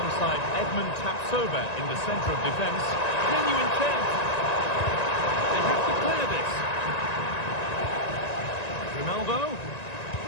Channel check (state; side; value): late; right; 1.9 ms